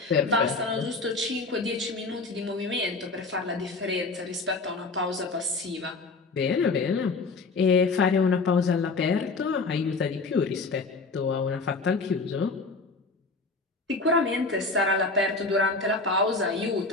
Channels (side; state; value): right; quieter; 3.8 dB